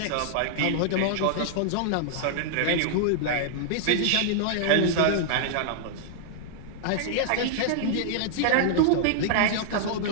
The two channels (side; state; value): both; different; correlation -0.01